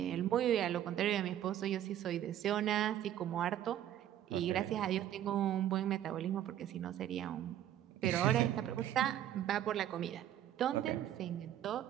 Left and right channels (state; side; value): quieter; left; 11.4 dB